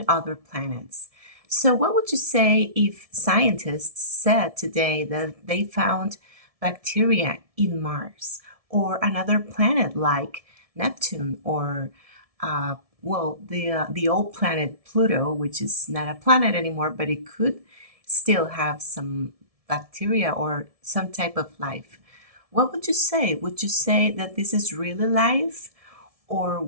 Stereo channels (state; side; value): late; left; 1.7 ms